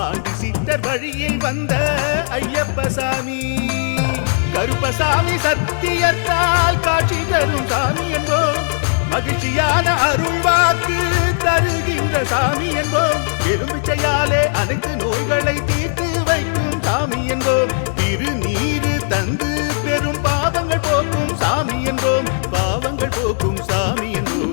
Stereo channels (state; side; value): silent; right; digital silence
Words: சித்தர் வழியில் வந்த ஐயப்பசாமி கருப்பசாமி சத்தியத்தால் காட்சி தரும் சாமி என்போம் மகிழ்ச்சியான அருள்வாக்கு தருகின்ற சாமி என்போம் எலும்பிச்சையாலே அனைத்து நோய்களை தீர்த்து வைக்கும் சாமி என்போம் திருநீரு தந்து பெரும் பாவங்கள் போக்கும் சாமி என்போம் பாவங்கள் போக்கும் சாமி